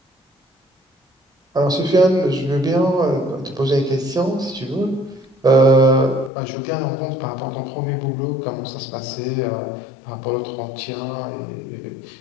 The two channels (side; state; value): right; drops out; at 6.3 s